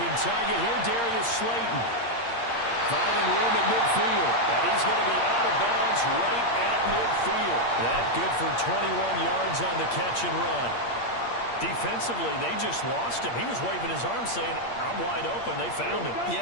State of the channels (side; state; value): right; late; 8.6 ms